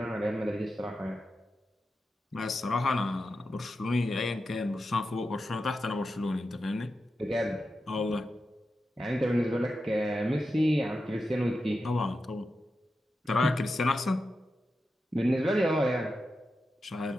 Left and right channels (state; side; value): normal; both; correlation 0.90